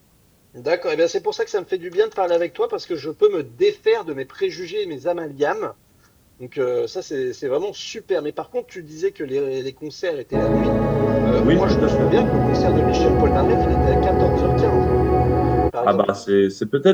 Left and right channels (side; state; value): both; identical; correlation 1.00